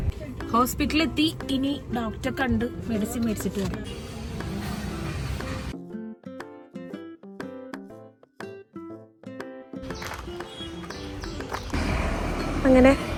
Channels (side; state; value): both; identical; correlation 1.00